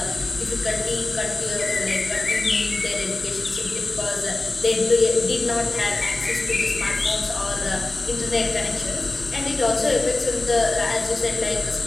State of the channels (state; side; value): quieter; right; 3.0 dB